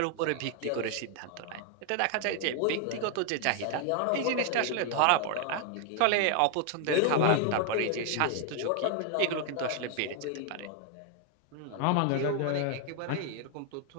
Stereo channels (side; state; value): both; different; correlation 0.00